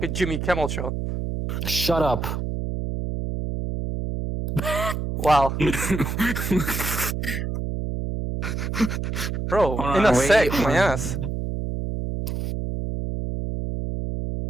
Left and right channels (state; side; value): noise; right; hum, 3 dB below the sound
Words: a Jimmy Kimmel show. Shut up. Wow. Bro, Hold in on, a wait. sec, my ass.